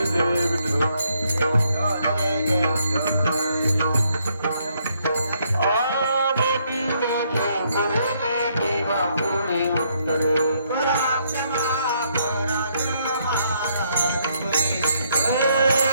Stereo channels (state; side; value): inverted; both; correlation -0.72